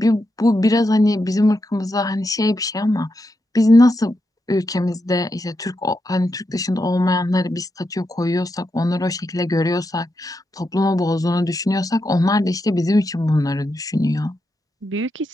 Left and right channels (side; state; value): both; normal; correlation 0.85